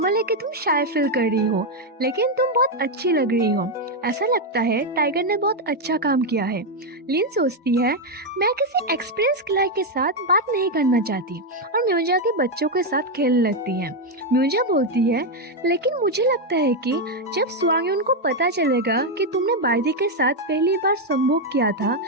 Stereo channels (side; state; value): both; normal; correlation 0.03